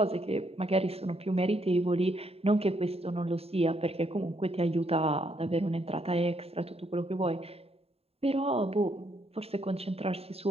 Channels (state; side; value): late; left; 0.29 ms